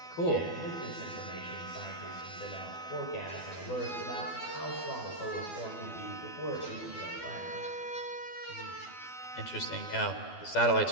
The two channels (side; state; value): right; late; 12 ms